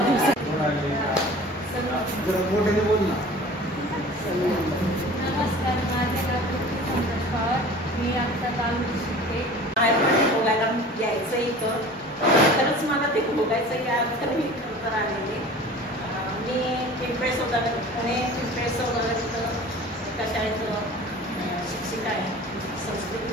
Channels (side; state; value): both; normal; correlation 0.42